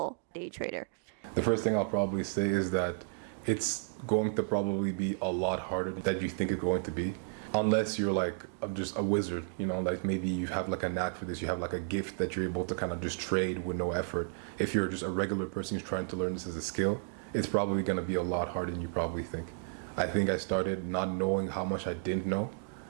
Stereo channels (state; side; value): silent; left; digital silence